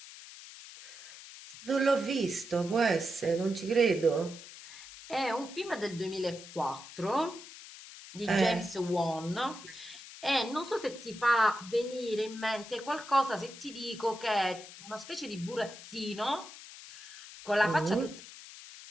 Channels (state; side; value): noise; left; hiss, 15 dB below the sound